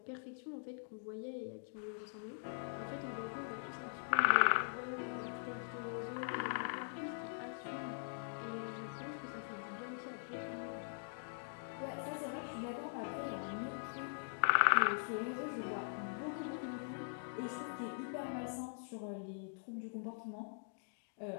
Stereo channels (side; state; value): right; silent; digital silence